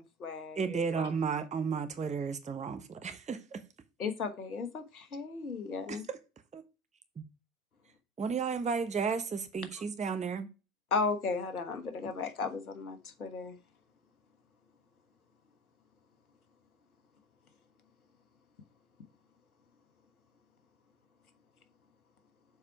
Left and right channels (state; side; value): normal; both; correlation 0.40